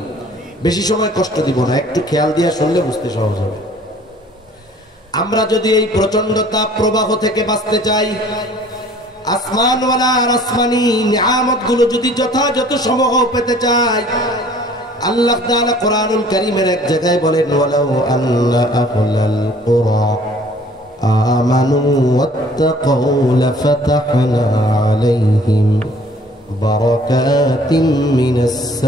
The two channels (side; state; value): both; normal; correlation 0.53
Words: বেশি সময় কষ্ট দিব না, একটু খেয়াল দিয়ে শুনলে বুঝতে সহজ হবে। আমরা যদি এই প্রচন্ড তাপ প্রবাহ থেকে বাঁচতে চাই, আসমানওয়ালা আর আসমানি নিয়ামতগুলো যদি যথাযথ সমূহ পেতে চাই, আল্লাহ তাআলা কোরআনুল কারীমের এক জায়গায় বলেন, ওয়ালাউ আন্না আহলাল কুরা আমানু ওয়াত্তাকাউ লাফাতাহনা আলাইহিম বারাকাতিম মিনাস